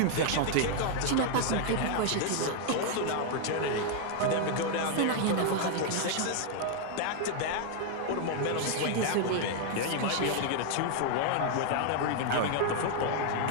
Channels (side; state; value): both; different; correlation 0.00